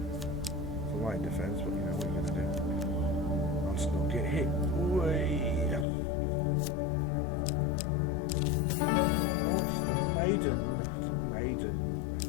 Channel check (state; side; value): drops out; right; at 5.9 s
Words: It's a light defense, but you know what you're gonna do. I'll still get hit. Way. Oh, it's the maiden. It's a maiden.